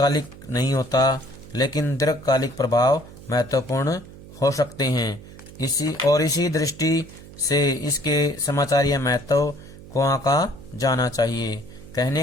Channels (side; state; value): right; noise; hum, 18 dB below the sound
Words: नहीं होता लेकिन दीर्घकालिक प्रभाव महत्वपूर्ण हो सकते हैं। इसी दृष्टि से इसके समाचारीय महत्व को आंका जाना चाहिए।